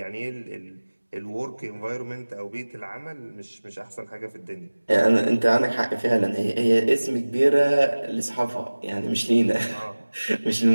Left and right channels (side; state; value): both; inverted; correlation -1.00